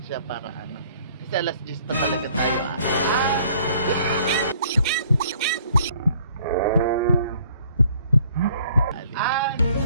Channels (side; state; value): both; inverted; correlation -0.59